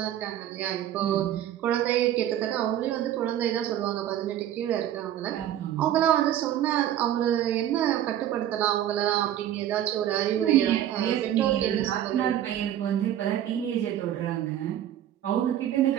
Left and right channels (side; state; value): left; quieter; 11.5 dB